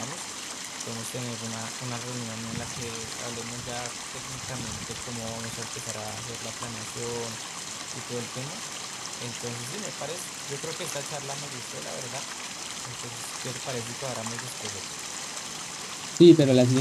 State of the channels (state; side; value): identical; both; correlation 1.00